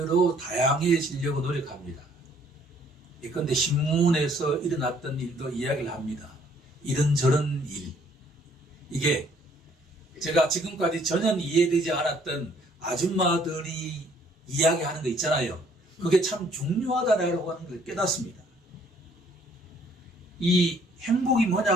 다양해지려고 노력합니다. 예컨대 신문에서 일어났던 일도 이야기를 합니다. 이런저런 일. 이게 제가 지금까지 전혀 이해되지 않았던 아줌마들이 이야기하는 거 있잖아요. 그게 참 중요하다라고 하는 걸 깨닫습니다. 이 행복이 뭐냐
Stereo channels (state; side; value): normal; both; correlation 0.62